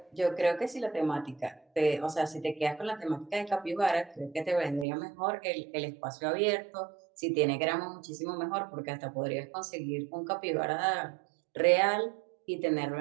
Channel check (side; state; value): left; drops out; at 4.9 s